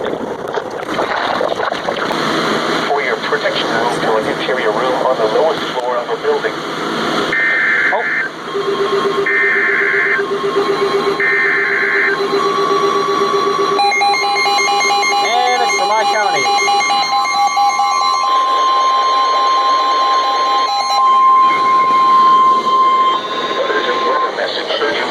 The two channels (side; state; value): both; identical; correlation 1.00